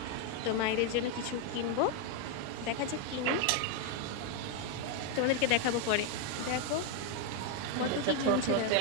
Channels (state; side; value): different; both; correlation 0.01